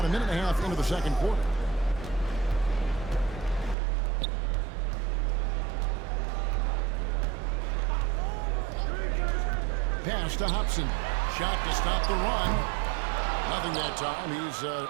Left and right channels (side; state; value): left; drops out; at 3.8 s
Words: a minute and a half into the second quarter. Pass to Hobson. Shot to stop the run. Nothing that time. He's